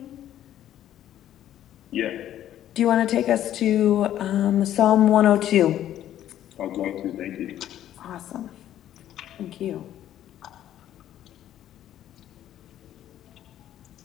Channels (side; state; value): right; quieter; 11.8 dB